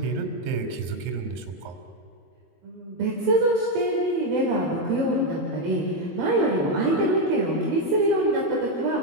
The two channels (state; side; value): late; left; 22 ms